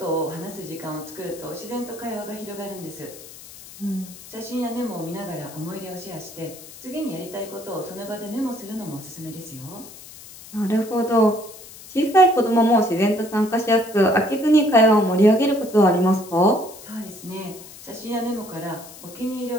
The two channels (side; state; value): left; noise; hiss, 17 dB below the sound